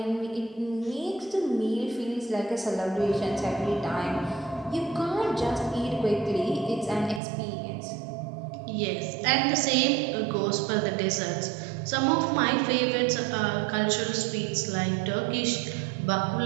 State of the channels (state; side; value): drops out; left; at 7.2 s